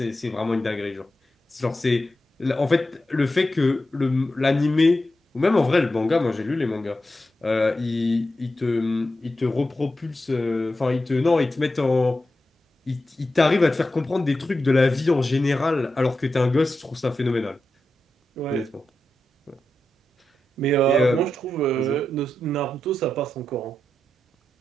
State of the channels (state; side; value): normal; both; correlation 0.89